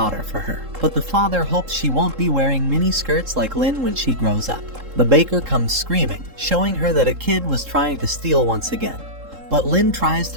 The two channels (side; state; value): left; late; 3.7 ms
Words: for her, but the father hopes she won't be wearing mini skirts like Lin when she grows up. The baker comes screaming, showing her that a kid was trying to steal once again. But Lin tries